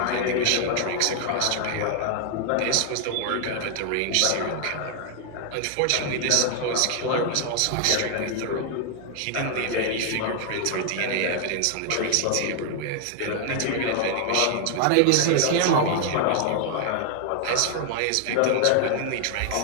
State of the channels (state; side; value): different; both; correlation 0.00